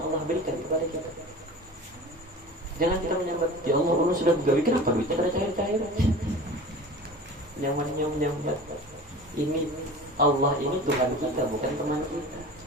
Allah berikan kepada kita. Jangan kita menyambat, ya Allah, Allah sudah gawe, kenapa duitnya pada cair-cair? Nyambat. Ini Allah ini Tuhan kita, bukan teman kita.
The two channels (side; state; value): both; normal; correlation 0.37